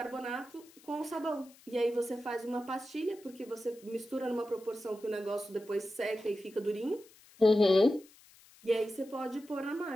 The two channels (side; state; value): left; noise; hiss, 25 dB below the sound